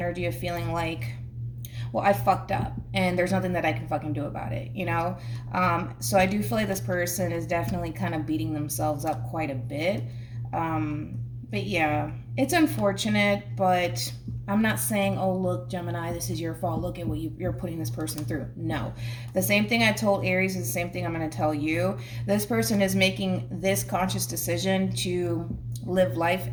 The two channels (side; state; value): both; identical; correlation 1.00